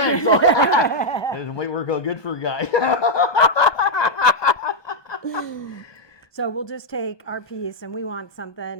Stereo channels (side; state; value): right; late; 1.2 ms